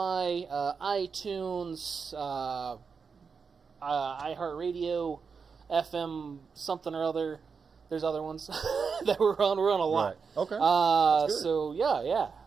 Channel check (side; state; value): left; quieter; 5.5 dB